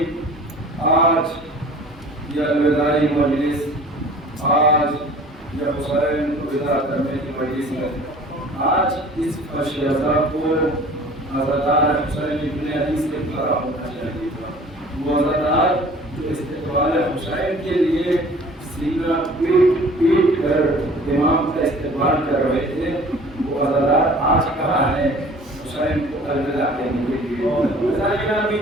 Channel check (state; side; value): normal; both; correlation 0.47